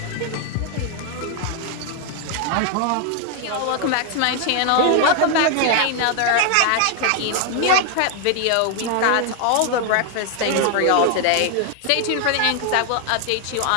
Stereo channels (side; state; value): both; different; correlation 0.00